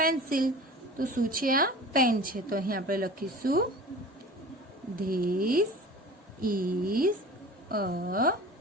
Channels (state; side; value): normal; both; correlation 0.39